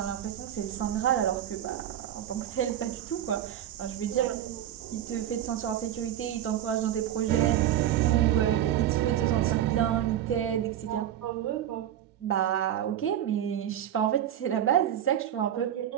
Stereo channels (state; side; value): quieter; left; 11.2 dB